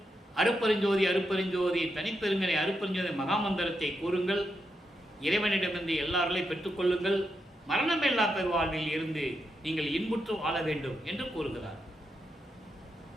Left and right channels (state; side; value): normal; both; correlation 0.84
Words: அருப்பெருஞ்சோதி அருப்பெருஞ்சோதி தனிப்பெருங்கனை அருப்பெருஞ்சோதி மகாமந்திரத்தை கூறுங்கள். இறைவனிடமிருந்து எல்லாரையும் பெற்றுக்கொள்ளுங்கள். மரணமில்லா பெருவாழ்வில் இருந்து நீங்கள் இன்புற்று வாழ வேண்டும் என்று கூறுகிறார்.